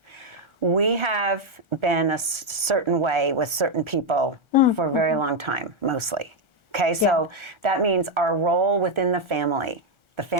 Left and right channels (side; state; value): left; late; 1.4 ms